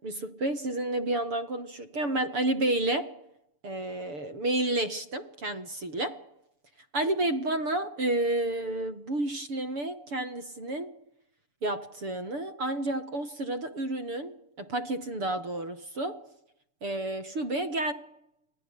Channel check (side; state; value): left; late; 6.9 ms